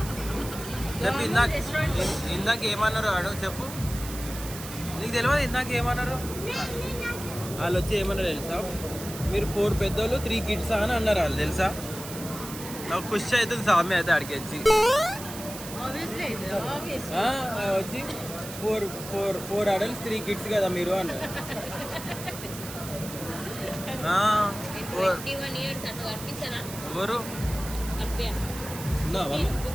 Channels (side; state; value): right; noise; hiss, 11 dB below the sound